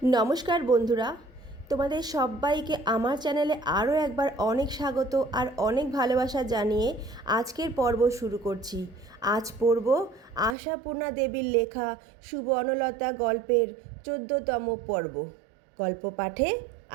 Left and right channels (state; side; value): drops out; left; at 10.6 s